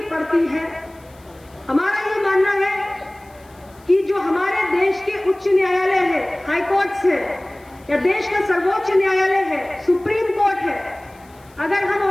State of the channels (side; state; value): left; noise; hiss, 30 dB below the sound